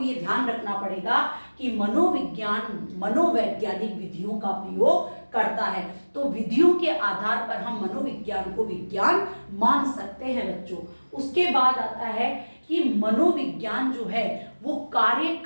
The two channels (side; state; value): both; inverted; correlation -1.00